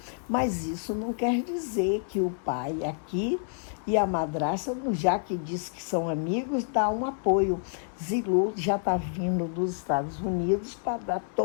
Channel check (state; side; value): silent; right; digital silence